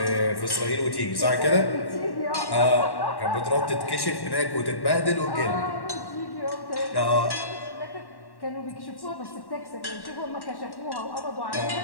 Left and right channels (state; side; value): late; right; 1.1 ms